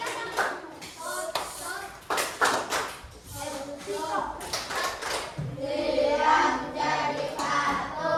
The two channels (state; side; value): identical; both; correlation 1.00